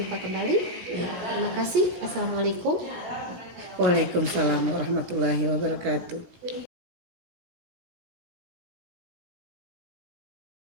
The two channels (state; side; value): late; left; 17 ms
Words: kembali. Terima kasih. Assalamualaikum. Waalaikumsalam warahmatullahi wabarakatuh.